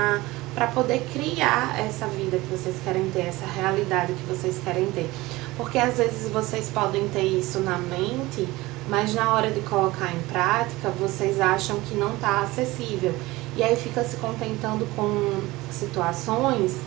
para poder criar essa vida que vocês querem ter, essa realidade que vocês querem ter. Porque às vezes vocês podem ter isso na mente, mas na hora de colocar em prática, vocês acham que não está acessível. E aí fica se contentando com situações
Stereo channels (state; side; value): quieter; left; 19.9 dB